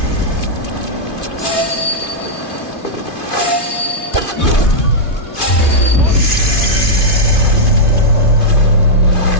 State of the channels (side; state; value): right; late; 2.6 ms